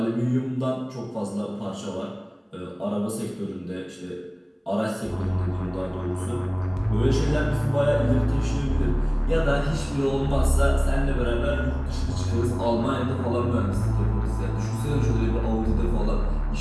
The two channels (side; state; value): both; identical; correlation 1.00